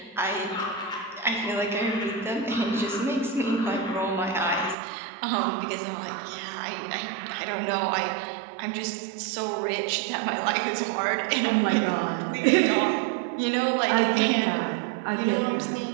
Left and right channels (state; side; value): drops out; left; at 4.8 s